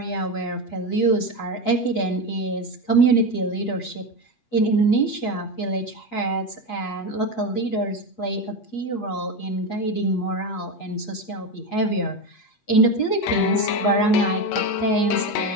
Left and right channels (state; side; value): late; right; 8.4 ms